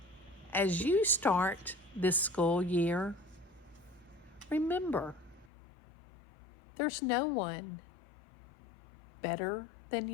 as you start this school year, remember, there's no one better than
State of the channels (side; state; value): right; drops out; at 5.5 s